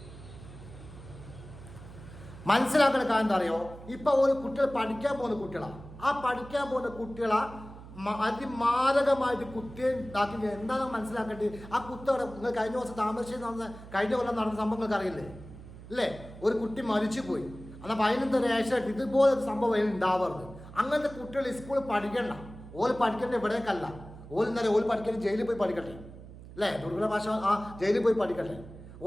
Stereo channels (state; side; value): noise; right; hum, 16 dB below the sound